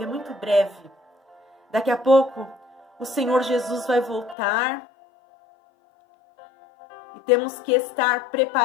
é muito breve. Daqui a pouco o Senhor Jesus vai voltar e temos que estar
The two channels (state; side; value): drops out; right; at 4.4 s